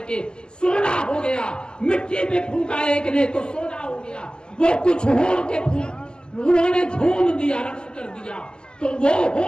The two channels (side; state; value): right; late; 0.047 ms